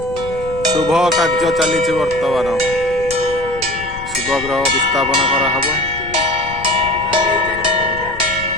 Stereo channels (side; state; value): left; noise; rumble, 14 dB below the sound